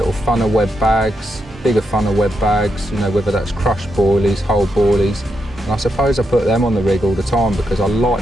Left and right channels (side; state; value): both; normal; correlation 0.83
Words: funnel web bags, bigger funnel web bags, you know, whether that's crushed boilies, whole boilies. And I suppose I put them on the rig all the time because I